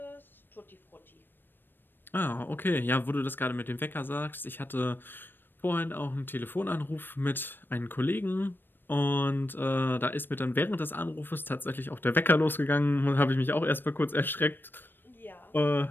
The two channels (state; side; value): late; right; 0.095 ms